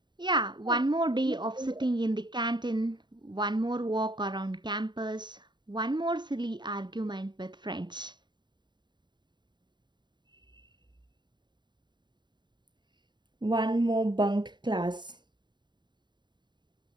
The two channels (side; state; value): left; late; 0.22 ms